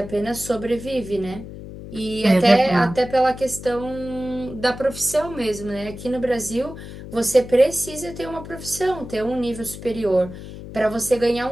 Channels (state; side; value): noise; left; hum, 12 dB below the sound